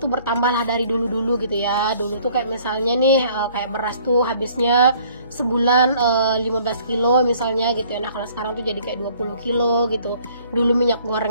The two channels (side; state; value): both; inverted; correlation -0.58